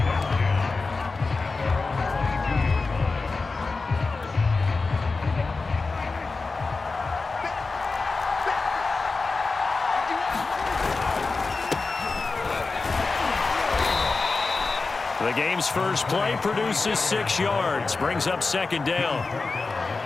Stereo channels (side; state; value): right; quieter; 4.0 dB